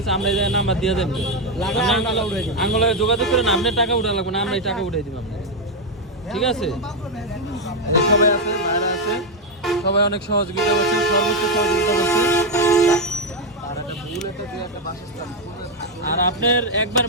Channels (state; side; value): normal; both; correlation 0.04